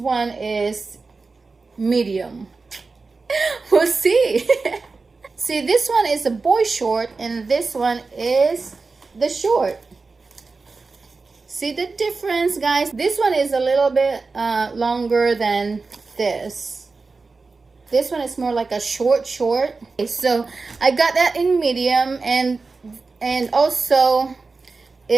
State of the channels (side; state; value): left; quieter; 4.1 dB